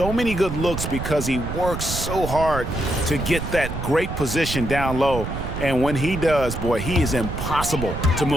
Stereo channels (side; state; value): right; noise; rumble, 6 dB below the sound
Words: many good looks because he works so hard to get that great position down low. And when he does, boy, he is impossible to